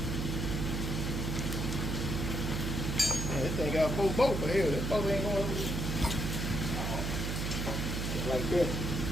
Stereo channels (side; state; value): right; noise; hum, 1 dB below the sound